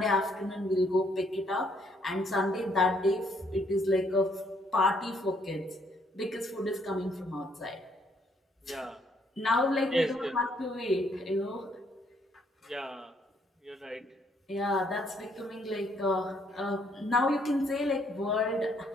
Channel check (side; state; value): both; normal; correlation 0.69